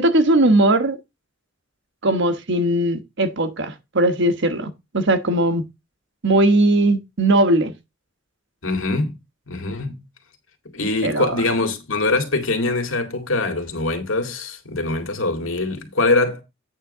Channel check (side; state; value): both; normal; correlation 0.17